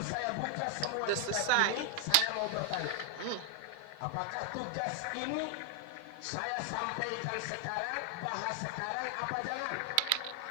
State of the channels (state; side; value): different; both; correlation 0.00